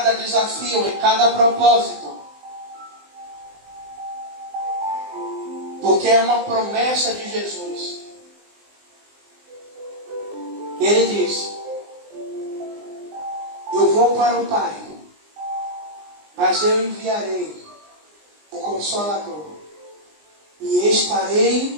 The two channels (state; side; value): late; left; 19 ms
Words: desafio, em cada propósito. Porque é uma promessa de Jesus. Ele diz: eu vou para o Pai, mas eu enviarei o Consolador, e